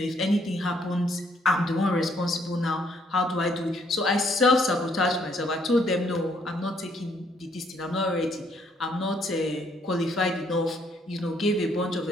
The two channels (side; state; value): both; normal; correlation 0.68